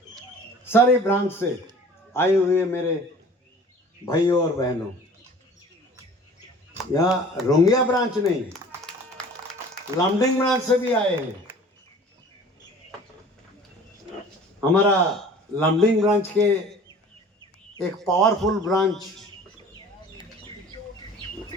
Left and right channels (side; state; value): both; normal; correlation 0.46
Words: सारे ब्रांच से आए हुए मेरे भाइयों और बहनों, यहाँ रोंगिया ब्रांच नहीं, लामडिंग ब्रांच से भी आए हैं। हमारा लामडिंग ब्रांच के एक पावरफुल ब्रांच